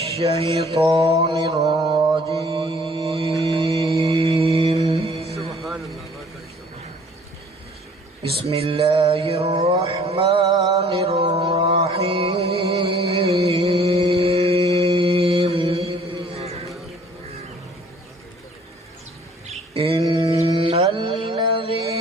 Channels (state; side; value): normal; both; correlation 0.55